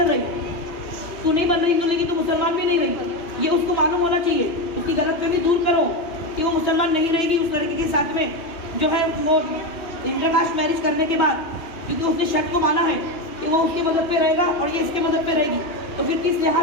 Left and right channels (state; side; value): late; right; 3.0 ms